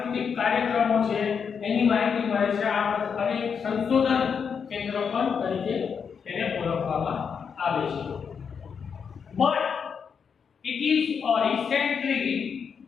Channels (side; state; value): right; quieter; 6.5 dB